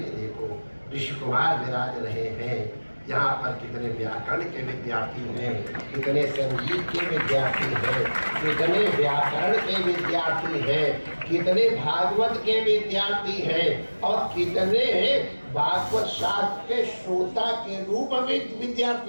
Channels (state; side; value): inverted; both; correlation -1.00